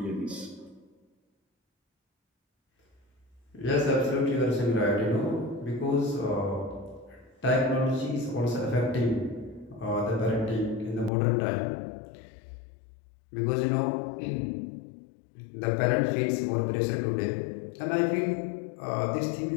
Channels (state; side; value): drops out; right; at 11.1 s